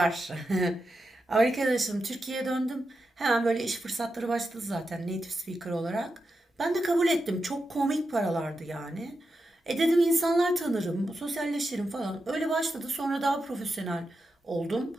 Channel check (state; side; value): normal; both; correlation 0.88